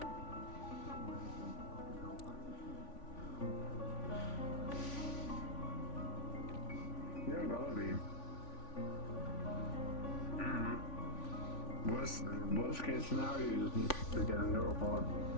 Yeah, gotta be. Worst case scenario, you just need to get a new report.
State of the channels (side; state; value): right; late; 3.5 ms